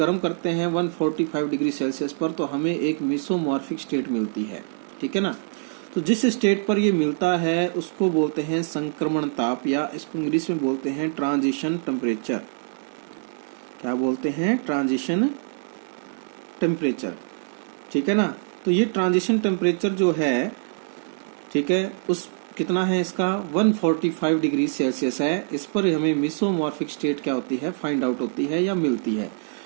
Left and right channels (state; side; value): silent; left; digital silence